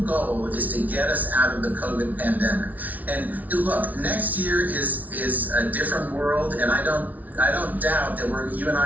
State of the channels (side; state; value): left; late; 0.075 ms